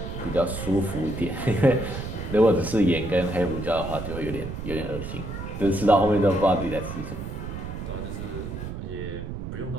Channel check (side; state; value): right; noise; rumble, 7 dB below the sound